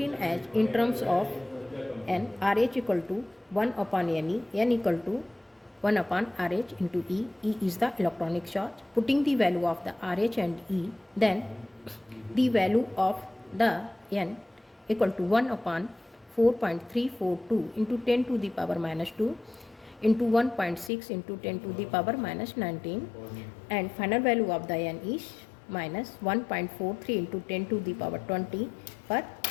as in terms of N, RH equal to 1 upon Ne, N equal to 1 upon RH into E. E is the electronic charge. Putting the value of the RH and E, then the value of the N equal to 1 upon 4.342 into 10 to the power minus 2 into 1.6 into 10 to the power minus 19, and final value of the N is minus 1.43 into 10 to the power 20 per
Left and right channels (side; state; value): right; drops out; at 20.9 s